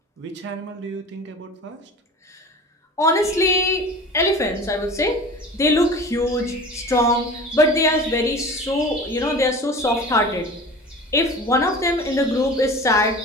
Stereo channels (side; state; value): both; normal; correlation 0.38